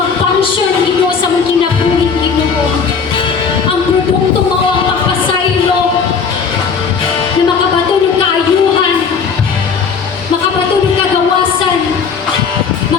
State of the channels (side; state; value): right; quieter; 5.9 dB